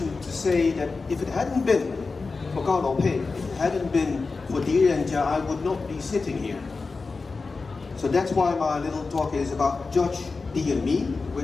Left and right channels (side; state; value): right; quieter; 4.1 dB